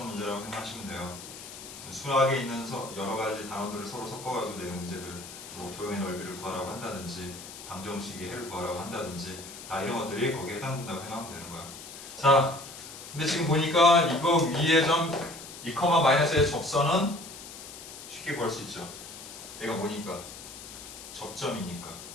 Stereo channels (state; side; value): noise; left; hiss, 13 dB below the sound